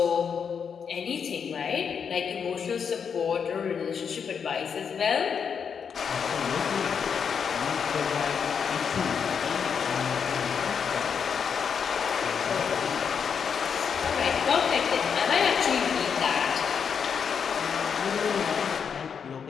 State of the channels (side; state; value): right; quieter; 6.8 dB